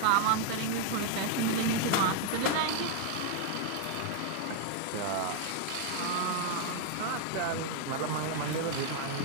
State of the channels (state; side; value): different; both; correlation 0.00